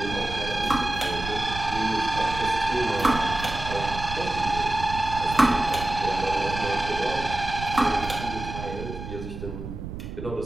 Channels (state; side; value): noise; right; rumble, 8 dB below the sound